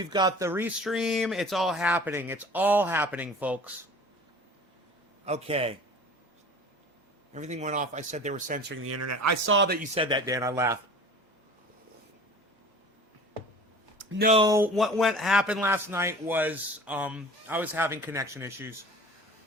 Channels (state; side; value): normal; both; correlation 0.42